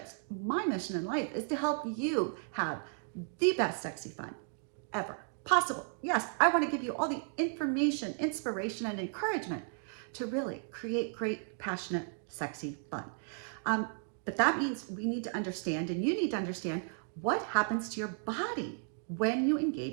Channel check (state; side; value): silent; left; 55 dB below the other